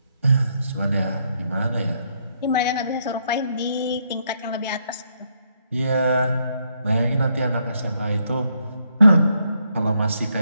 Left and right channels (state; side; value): inverted; both; correlation -0.75